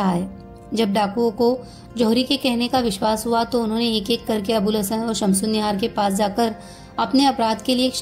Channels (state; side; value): identical; both; correlation 1.00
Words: है। जब डाकुओं को जौहरी के कहने का विश्वास हुआ तो उन्होंने एक एक करके अबुल हसन और शमसुन्निहार के पास जाकर अपने अपराध के लिए